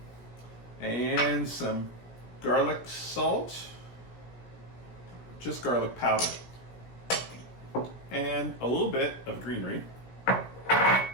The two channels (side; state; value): right; late; 17 ms